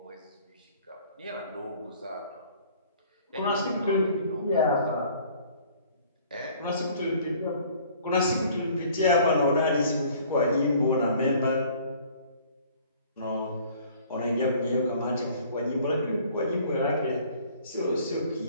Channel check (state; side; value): inverted; both; correlation -0.54